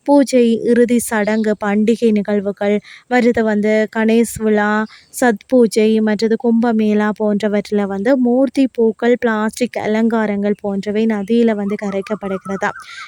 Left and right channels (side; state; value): both; identical; correlation 1.00